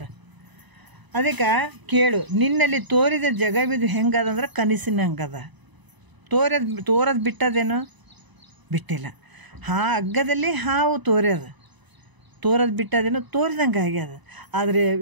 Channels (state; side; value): late; left; 1.0 ms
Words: ಅದಕ್ಕೆ ಕೇಳು, ನಿನ್ನಲ್ಲಿ ತೋರಿದ ಜಗವಿದು ಹೆಂಗದಂದ್ರೆ ಕನಸಿನಂಗದ. ತೋರದು ಬಿಟ್ಟದೇನು? ಬಿಟ್ಟಿಲ್ಲ. ಹಗ್ಗದಲ್ಲಿ ಹಾವು ತೋರದು ಬಿಟ್ಟದೇನು? ತೋರಿದಂಗೆ ಆಗ್ಯದ. ಆದರೆ